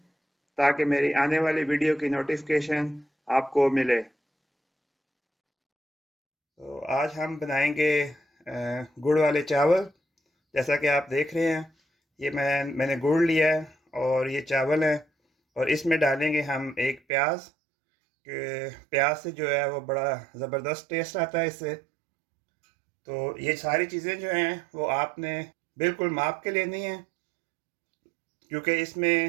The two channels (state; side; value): drops out; left; at 17.0 s